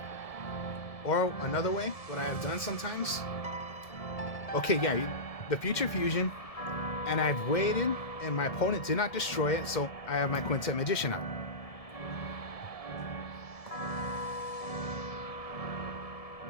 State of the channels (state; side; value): late; right; 1.7 ms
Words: or another way, what I have done sometimes. Okay, yeah, the future fusion, and I've waited, and my opponent did not destroy it, so I have my Quintet Magician out.